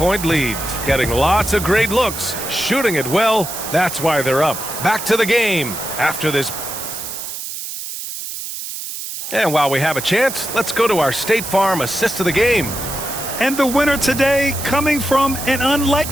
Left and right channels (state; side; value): noise; right; hiss, 8 dB below the sound